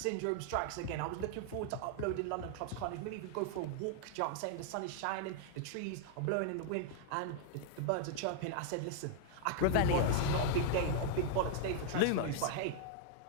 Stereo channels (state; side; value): different; both; correlation 0.00